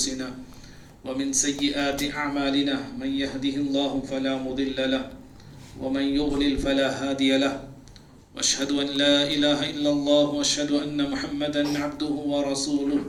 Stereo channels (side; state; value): both; identical; correlation 1.00